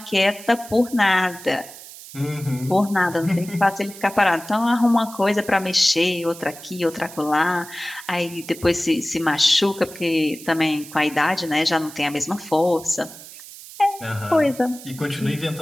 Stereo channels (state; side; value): noise; right; hiss, 16 dB below the sound